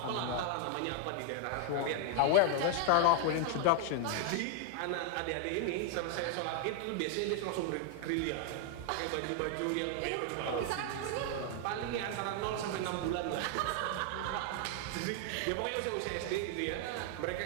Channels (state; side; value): different; both; correlation 0.00